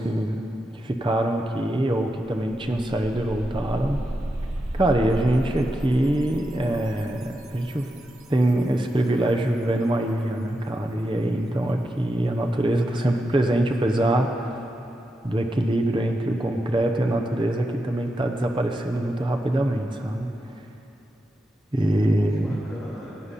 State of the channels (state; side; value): normal; both; correlation 0.87